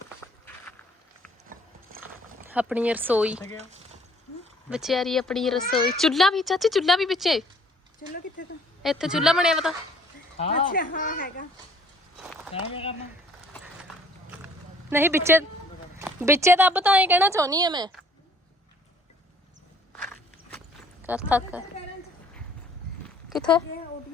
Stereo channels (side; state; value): both; normal; correlation 0.57